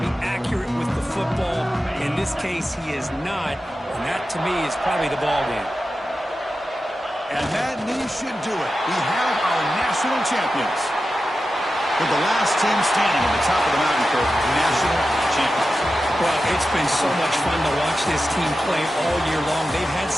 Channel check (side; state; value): both; normal; correlation 0.92